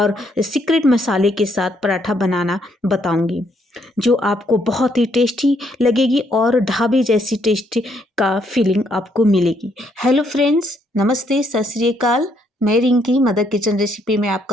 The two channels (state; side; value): normal; both; correlation 0.72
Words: सीक्रेट मसाले के साथ पराठा बनाना बताऊंगी, जो आपको बहुत ही टेस्टी लगेगी और ढाबे जैसी टेस्टी का फीलिंग आपको मिलेगी। हेलो फ्रेंड्स, नमस्ते, सत श्री अकाल। मैं रिंकी, मदर किचन रेसिपी में